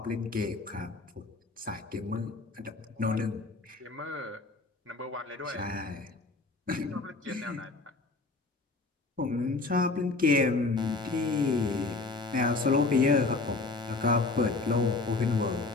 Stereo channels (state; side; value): quieter; right; 3.6 dB